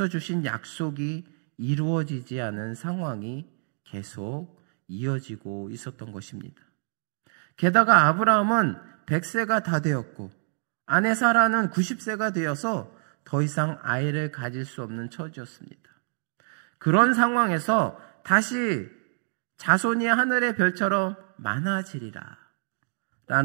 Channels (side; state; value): left; silent; 60 dB below the other